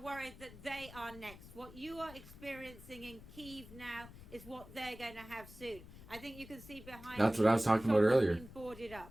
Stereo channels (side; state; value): left; noise; rumble, 17 dB below the sound